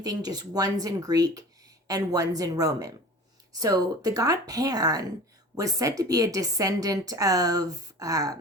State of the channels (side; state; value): both; normal; correlation 0.39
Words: thing, just one's in Greek and one's in Roman. So the god Pan was said to be a descendant of